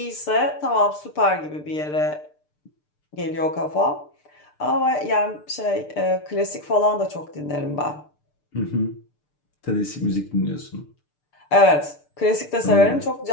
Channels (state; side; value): late; right; 6.7 ms